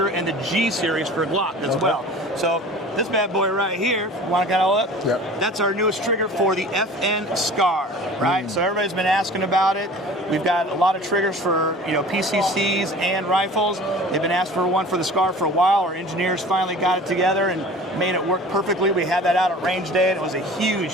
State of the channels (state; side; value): normal; both; correlation 0.42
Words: and the G series for Glock as well. So this bad boy right here, want to kind of hold up? Yep. That's our newest trigger for the FN SCAR, right? So everybody's been asking about it. We've got a lot of triggers for PCCs and rifles. They've been asked for one for the SCAR for a while. Our engineers finally got it together and made it work perfectly. We had that out at range day, and it was a